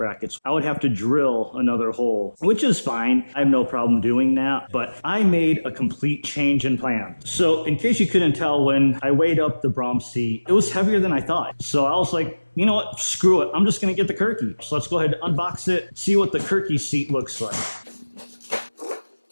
I would have to drill another hole, which is fine. I have no problem doing that, but I made a complete change in plan. So in case you couldn't tell, when I weighed up the Braum seat, it was heavier than I thought. So I was like, you know what, screw it. I'm just gonna get the Kirkey. So let's go ahead and unbox it, see what the Kirkey seat looks like.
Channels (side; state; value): both; inverted; correlation -1.00